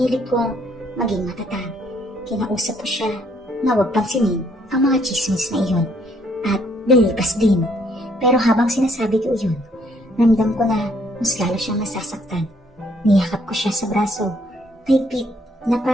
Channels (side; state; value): both; normal; correlation 0.67